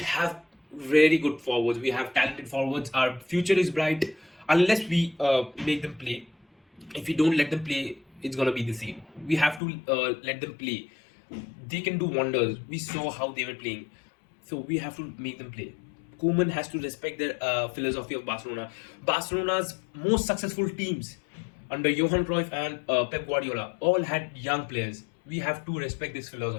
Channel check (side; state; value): right; drops out; at 9.6 s